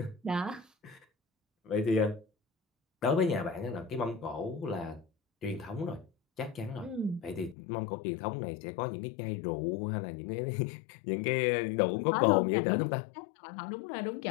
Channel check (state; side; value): drops out; right; at 7.6 s